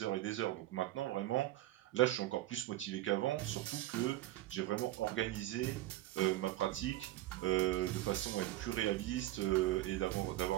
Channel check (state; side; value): quieter; left; 15.3 dB